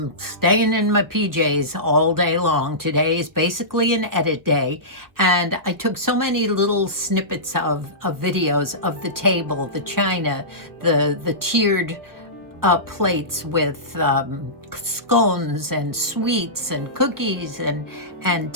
staying in my PJs all day long. Today is basically an edit day, and I took so many little snippets of videos of the table, the china, the tiered plates with scones and sweets and cookies and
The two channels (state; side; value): late; left; 1.2 ms